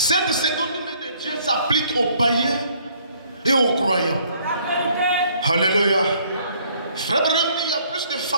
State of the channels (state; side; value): inverted; both; correlation -0.62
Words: seconde main de Dieu s'applique aux païens et aux croyants. Alléluia. Frère Branham dit, il y a plus de